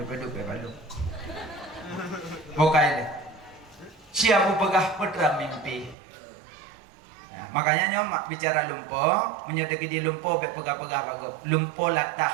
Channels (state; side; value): drops out; left; at 6.0 s